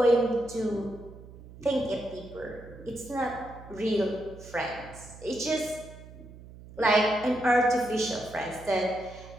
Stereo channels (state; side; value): noise; right; hum, 17 dB below the sound